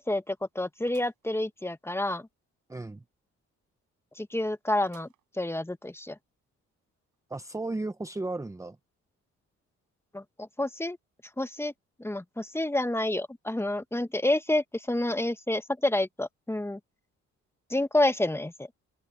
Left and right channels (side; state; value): both; normal; correlation 0.84